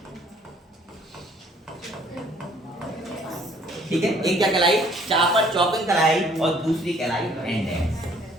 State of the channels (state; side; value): normal; both; correlation 0.59